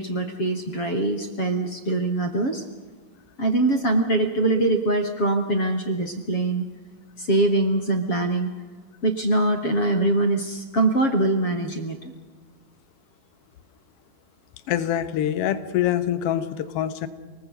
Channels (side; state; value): right; late; 7.3 ms